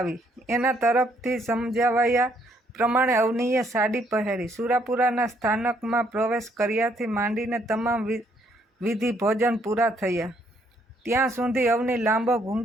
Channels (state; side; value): normal; both; correlation 0.69